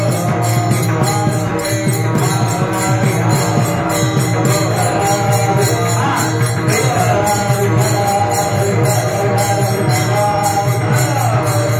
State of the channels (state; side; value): identical; both; correlation 1.00